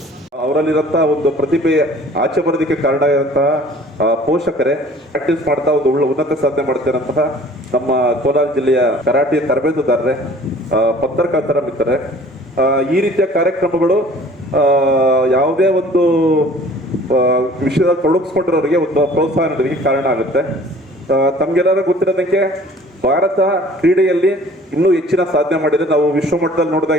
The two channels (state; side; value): normal; both; correlation 0.50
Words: ಅವರಲ್ಲಿರಂತ ಒಂದು ಪ್ರತಿಭೆ ಆಚೆ ಬರೋದಕ್ಕೆ ಕಾರಣ ಇರುವಂತಹ ಪೋಷಕರೇ ಪ್ರಾಕ್ಟೀಸ್ ಮಾಡ್ತಾ ಒಂದು ಉನ್ನತ ಸಾಧನೆ ಮಾಡ್ತಿರೋಂತಹ ನಮ್ಮ ಕೋಲಾರ ಜಿಲ್ಲೆಯ ಕರಾಟೆ ತರಬೇತುದಾರರೇ, ಪತ್ರಕರ್ತರ ಮಿತ್ರರೇ, ಈ ರೀತಿಯ ಕಾರ್ಯಕ್ರಮಗಳು ಯಾವುದೇ ಒಂದು ವಿಷಯದಲ್ಲಿ ತೊಡಗಿಸ್ಕೊಂಡಿರೋರಿಗೆ ಒಂದು ಪ್ರೋತ್ಸಾಹ ನೀಡೋದಕ್ಕೆ ಕಾರಣ ಆಗುತ್ತೆ. ತಮ್ಗೆಲ್ಲರೂ ಗೊತ್ತಿರೋದಕ್ಕೆ ಭಾರತ ಕ್ರೀಡೆಯಲ್ಲಿ ಇನ್ನೂ ಹೆಚ್ಚಿನ ಸಾಧನೆ ಮಾಡಿದ್ರೆ ನಾವು ವಿಶ್ವ ಮಟ್ಟದಲ್ಲಿ